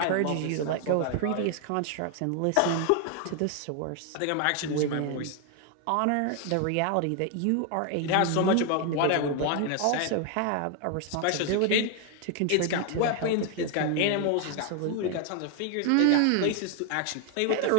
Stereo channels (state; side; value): different; both; correlation 0.01